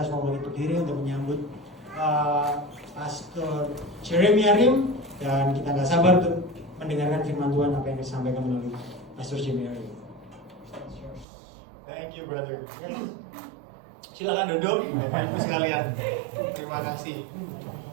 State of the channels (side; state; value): left; drops out; at 11.2 s